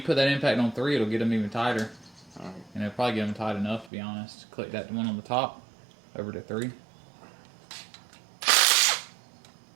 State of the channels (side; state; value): left; drops out; at 3.9 s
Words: put that impact on 3, it'll get them even tighter, Alright. and it'll probably get them tight enough. To be honest, click that one on the top over to 3.